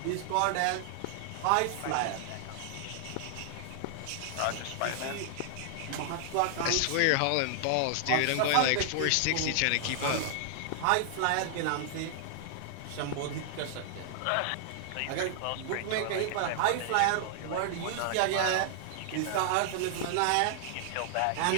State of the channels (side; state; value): both; different; correlation -0.01